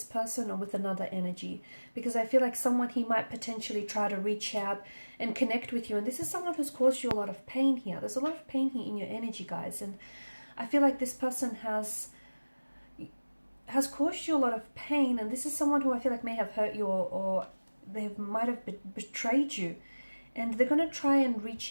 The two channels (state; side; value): inverted; both; correlation -1.00